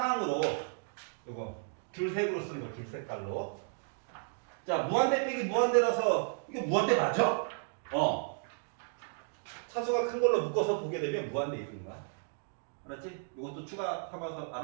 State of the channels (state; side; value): silent; left; 55 dB below the other